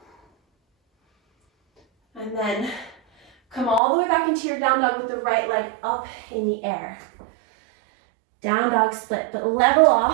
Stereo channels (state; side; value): drops out; left; at 3.8 s